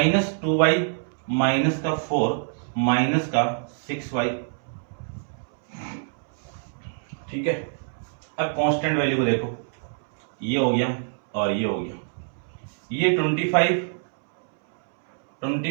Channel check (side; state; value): left; silent; 61 dB below the other